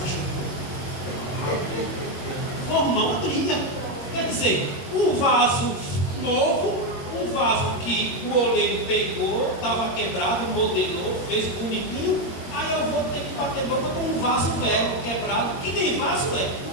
Formar uma briga. Quer dizer, o vaso novo, o vaso que o oleiro pegou, estava quebrado, modelou, fez bonitinho, aí eu vou ter que bater boca com um vaso velho, quebrado, que nem vaso é,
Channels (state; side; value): late; right; 21 ms